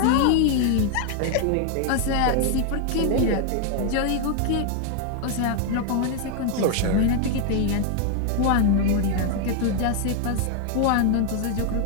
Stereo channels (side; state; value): both; different; correlation 0.01